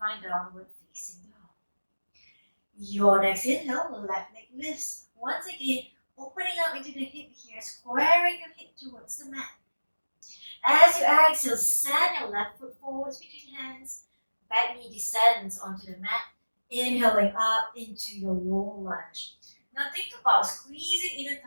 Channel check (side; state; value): both; inverted; correlation -1.00